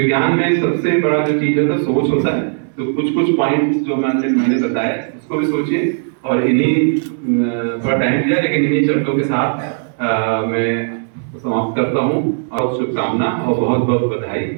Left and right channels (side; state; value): left; silent; digital silence